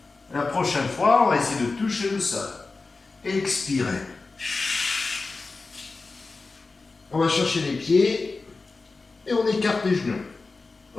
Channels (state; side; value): quieter; right; 3.8 dB